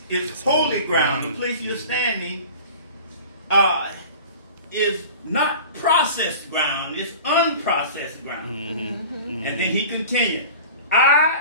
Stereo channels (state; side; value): inverted; both; correlation -0.39